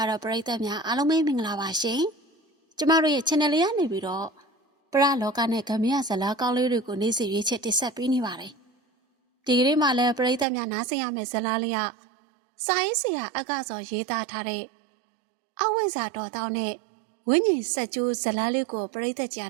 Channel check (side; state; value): left; drops out; at 10.5 s